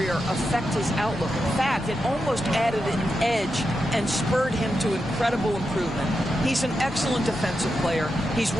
affect his outlook. In fact, it almost added an edge and spurred him to incredible improvement. He's an excellent defensive player. He's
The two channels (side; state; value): both; normal; correlation 0.87